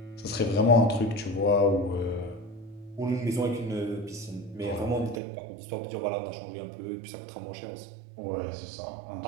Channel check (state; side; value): drops out; left; at 5.2 s